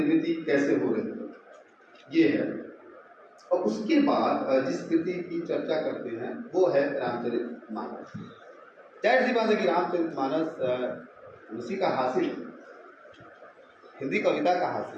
कैसे हो रही है, ये है। और उसके बाद जिस कृति की चर्चा करते हैं वो है रामचरितमानस। जाहिर सी बात है कि रामचरितमानस उसी का हासिल है, हिंदी कविता का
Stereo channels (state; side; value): identical; both; correlation 1.00